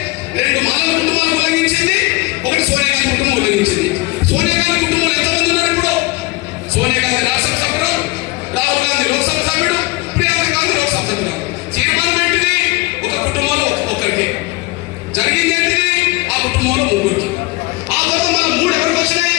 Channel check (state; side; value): quieter; right; 22.7 dB